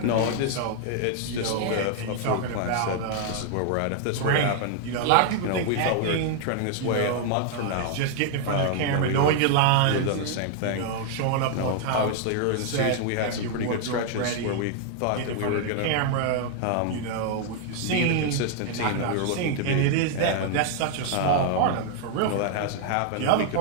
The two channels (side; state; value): both; different; correlation 0.00